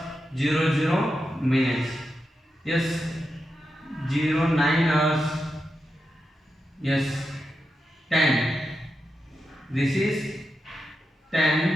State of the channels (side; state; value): both; normal; correlation 0.88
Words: 00 minutes. Yes. 09 hours. Yes. 10. This is